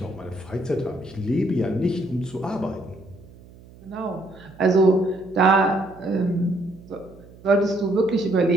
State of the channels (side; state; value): right; noise; hum, 22 dB below the sound